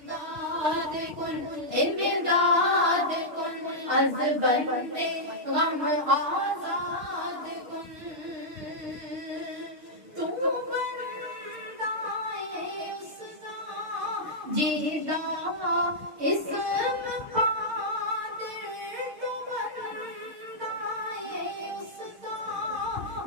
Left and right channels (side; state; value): left; late; 6.5 ms